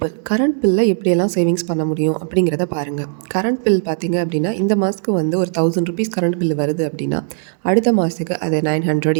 கரண்ட் பில்லில் எப்படியெல்லாம் சேவிங்ஸ் பண்ண முடியும் அப்படிங்கிறத பாருங்கள். கரண்ட் பில் பார்த்தீங்க அப்படின்னா இந்த மாதத்துக்கு வந்து ஒரு ₹1000 கரண்ட் பில் வருது அப்படின்னா அடுத்த மாதத்துக்கு அதை 900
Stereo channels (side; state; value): left; silent; digital silence